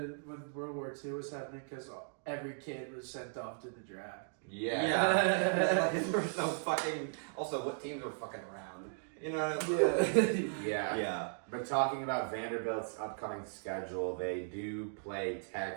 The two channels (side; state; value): left; silent; digital silence